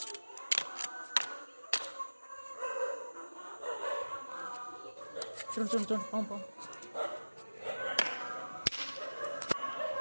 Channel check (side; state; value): both; inverted; correlation -1.00